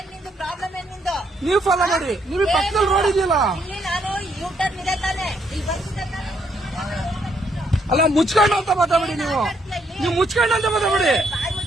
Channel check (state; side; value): normal; both; correlation 0.73